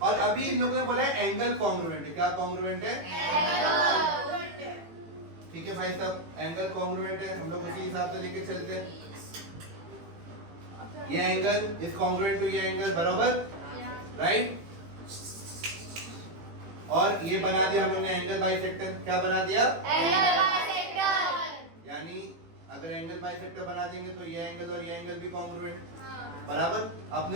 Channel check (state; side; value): late; left; 18 ms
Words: और अभी इन लोगों ने बोला है एंगल कॉन्ग्रुएंट है। क्या कॉन्ग्रुएंट है? ठीक है भाई साहब, एंगल कॉन्ग्रुएंट है, हम लोग उसी हिसाब से लेके चलते हैं। ये एंगल इज कॉन्ग्रुएंट टू ये एंगल, बराबर, राइट? और ये बना दिया हम लोगों ने एंगल बाइसेक्टर। क्या बना दिया? यानी अगर एंगल बाइसेक्टर बना देंगे तो ये एंगल और ये एंगल भी कॉन्ग्रुएंट, बराबर।